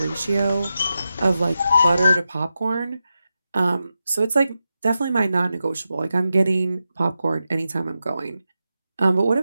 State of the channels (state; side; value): inverted; both; correlation -0.90